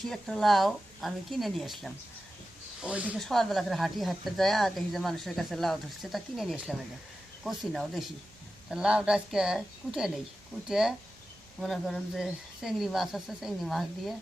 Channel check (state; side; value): normal; both; correlation 0.93